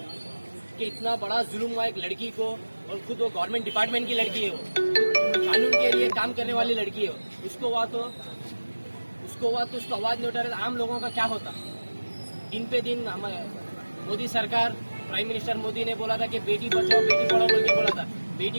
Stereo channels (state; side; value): inverted; both; correlation -1.00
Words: कि इतना बड़ा जुल्म हुआ एक लड़की को, और खुद वो गवर्नमेंट डिपार्टमेंट की लड़की है, वो कानून के लिए काम करने वाली लड़की है, उसको हुआ तो उसको हुआ तो उसको आवाज नहीं उठा रहे, आम लोगों का क्या होता। दिन पे दिन हमारे मोदी सरकार, प्राइम मिनिस्टर मोदी ने बोला था कि बेटी बचाओ बेटी पढ़ाओ बोल के बोला था।